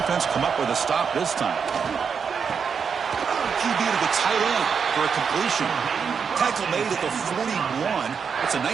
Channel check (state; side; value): quieter; left; 6.3 dB